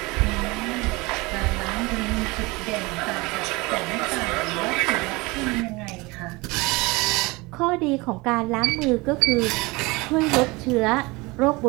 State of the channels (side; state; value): left; quieter; 24.0 dB